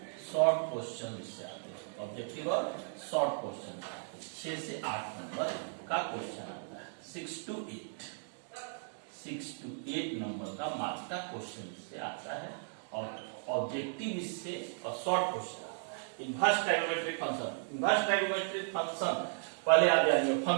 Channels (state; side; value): silent; left; digital silence